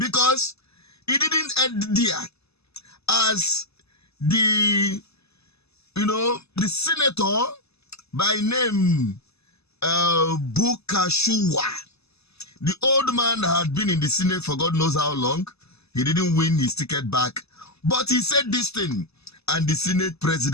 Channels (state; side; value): late; right; 0.79 ms